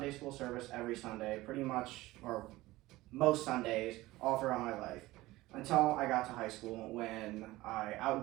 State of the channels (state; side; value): quieter; left; 18.5 dB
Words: school service every Sunday, pretty much, or most Sundays, all throughout my life. Until I got to high school when I